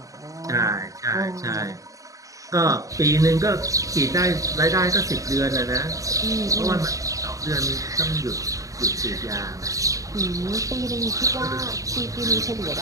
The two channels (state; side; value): late; left; 0.16 ms